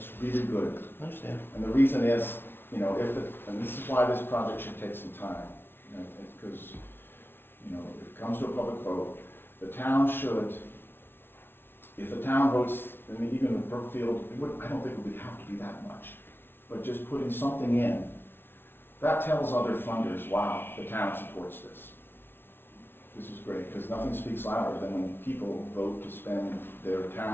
really good. I understand. And the reason is, and this is why this project should take some time. Because, if it comes to a public vote, the town should, if the town votes, I mean, even with Brookfield, I don't think it would have to be that much. But just putting something in, that tells other funders, wow, the town supports this. This is great, because nothing speaks louder than when people vote to spend their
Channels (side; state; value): right; late; 0.11 ms